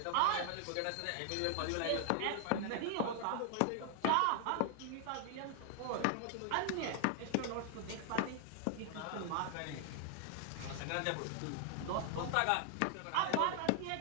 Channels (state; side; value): different; both; correlation 0.00